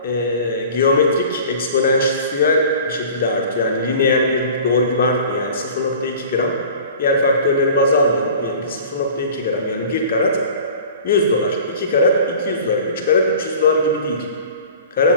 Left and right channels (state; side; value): inverted; both; correlation -0.43